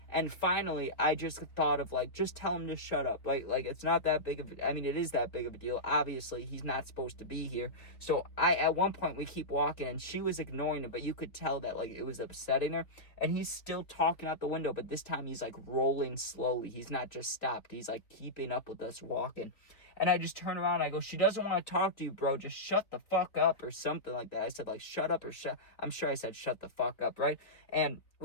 And finally, I just thought of, like, just tell him to shut up. Like it's not that big of it is that big of a deal. Obviously, he's not supposed to be here. So, at one point, we keep walking, and she was ignoring him, but you could tell that, like, it was upsetting her. And he's still talking out the window, but this time he's, like, rolling slowly. He's not just stopped. He's, like, keeping up with us walking. And I just turn around and I go, she doesn't want to talk to you, bro. Just shut the fuck up or something like that. I said, like, shut up or I'm sure I said shut the fuck up, right? And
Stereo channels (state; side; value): late; right; 3.4 ms